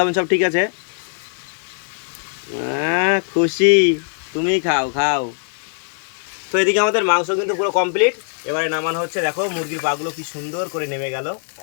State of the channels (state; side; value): silent; right; 64 dB below the other